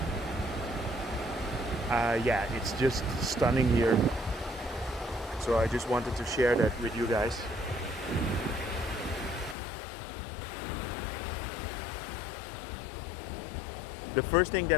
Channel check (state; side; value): drops out; right; at 9.6 s